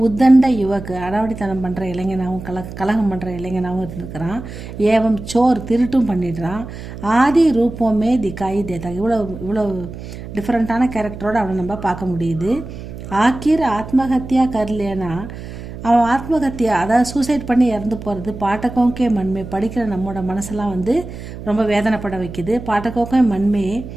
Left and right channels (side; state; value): right; noise; hum, 11 dB below the sound